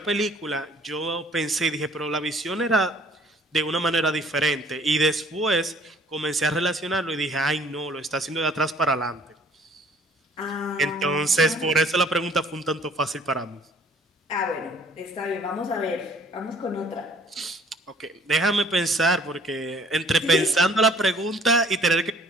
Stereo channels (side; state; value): both; normal; correlation 0.56